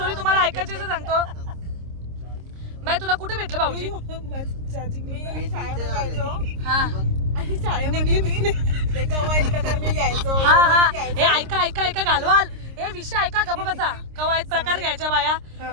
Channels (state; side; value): late; left; 26 ms